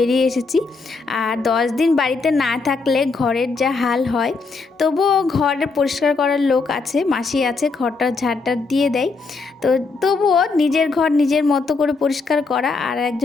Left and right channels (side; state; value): right; quieter; 4.2 dB